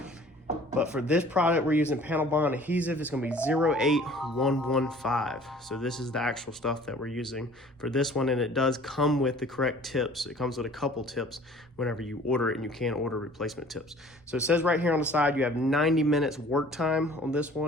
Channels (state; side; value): normal; both; correlation 0.50